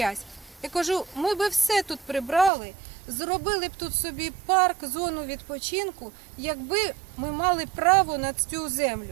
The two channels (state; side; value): drops out; left; at 2.5 s